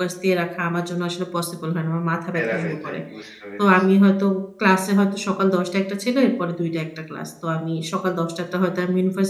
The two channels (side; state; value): both; identical; correlation 1.00